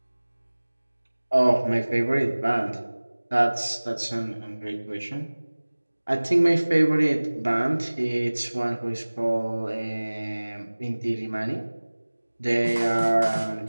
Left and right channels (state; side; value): inverted; both; correlation -1.00